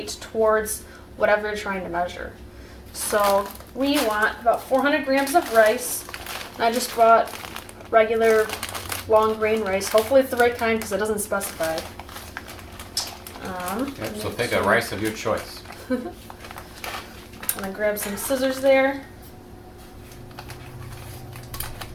towards whatever you're trying to measure. So we want about 400 grams of rice. I just bought regular long grain rice. Hopefully it's the right kind because it doesn't specify. Yep, so pick a rice of your choice. I'm going to grab some scissors there.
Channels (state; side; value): identical; both; correlation 1.00